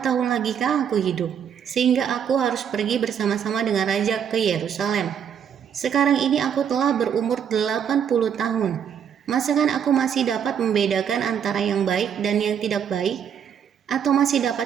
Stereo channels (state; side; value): quieter; left; 8.2 dB